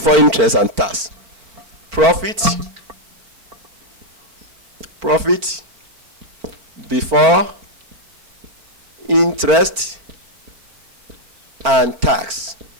interest and tax. Profit before interest and tax.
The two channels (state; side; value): late; left; 4.4 ms